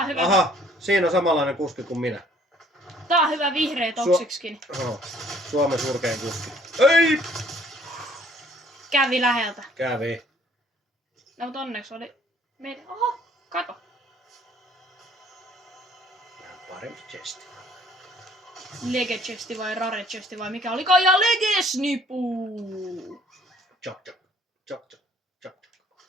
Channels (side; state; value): both; normal; correlation 0.59